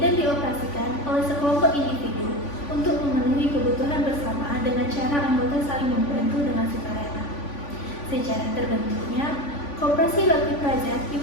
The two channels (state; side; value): late; right; 3.5 ms